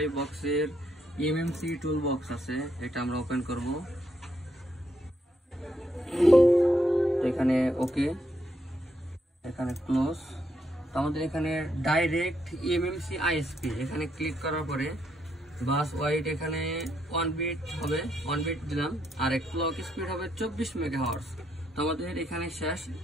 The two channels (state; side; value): normal; both; correlation 0.77